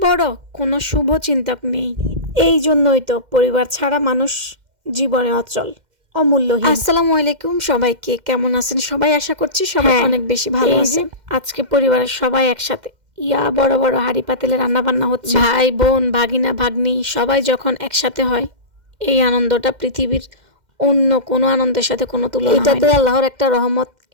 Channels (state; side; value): late; left; 2.1 ms